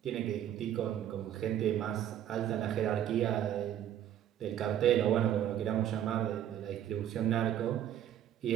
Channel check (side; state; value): left; quieter; 10.7 dB